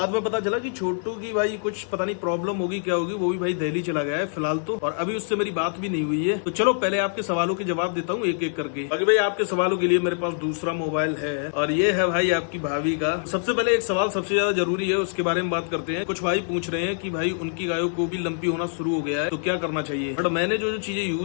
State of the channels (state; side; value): silent; right; digital silence